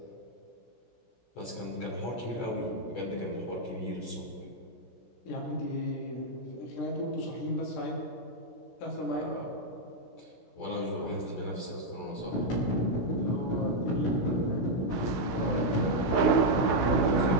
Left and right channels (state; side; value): late; right; 16 ms